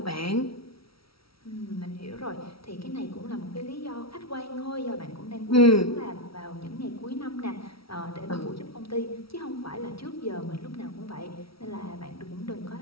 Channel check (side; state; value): right; late; 0.75 ms